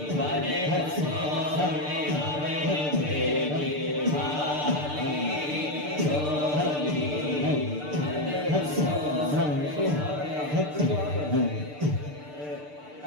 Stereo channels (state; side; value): late; left; 6.7 ms